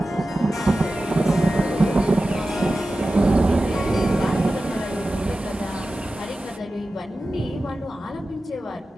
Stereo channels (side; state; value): both; normal; correlation 0.94